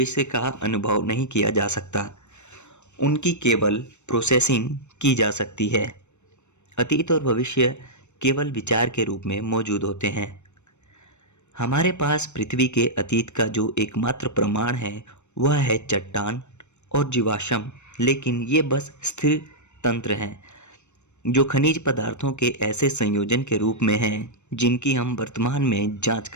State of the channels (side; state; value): right; late; 0.83 ms